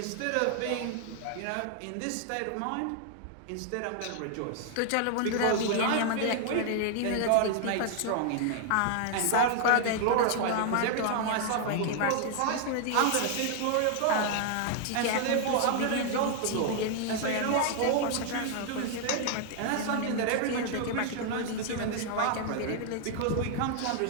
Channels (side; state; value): both; different; correlation 0.00